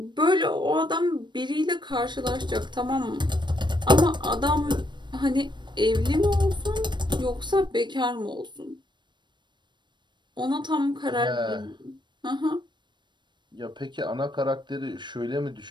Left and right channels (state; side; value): late; left; 0.22 ms